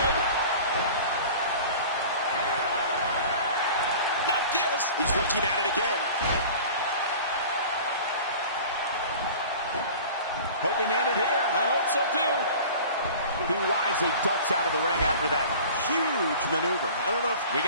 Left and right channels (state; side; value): inverted; both; correlation -0.41